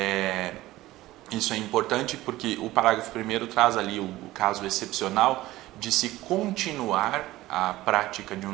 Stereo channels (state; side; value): quieter; left; 17.0 dB